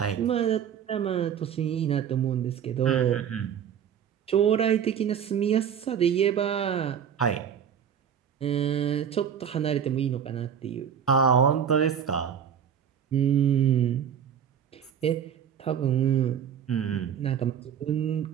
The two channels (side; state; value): left; quieter; 8.4 dB